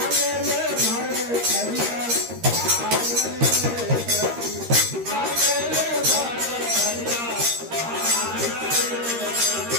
ले भर थरिया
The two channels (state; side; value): late; left; 13 ms